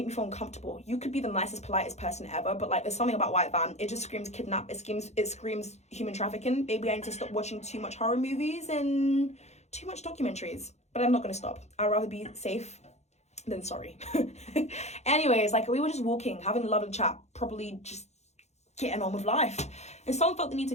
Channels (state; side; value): late; right; 0.32 ms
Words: me feel uncomfortable. You could be the nicest, politest person ever, but like there's something about white van. It just screams kidnap. It screams human trafficking. Maybe I need to stop watching too much horror movies and too much documentaries. But I'm not gonna stop. I'd rather be safe than sorry. Anyways, like we were just walking, having a lovely chat, probably just getting on with life. And someone felt the need